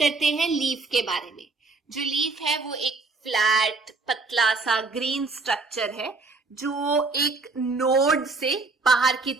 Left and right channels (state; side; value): quieter; left; 3.7 dB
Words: हैं लीफ के बारे में। जो लीफ है वो एक फ्लैट पतला सा ग्रीन स्ट्रक्चर है जो एक नोड से बाहर की